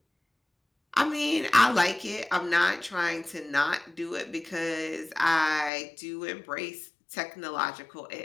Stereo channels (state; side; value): drops out; right; at 5.7 s